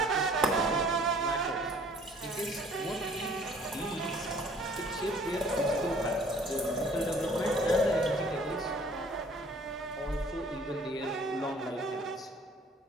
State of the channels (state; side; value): normal; both; correlation 0.55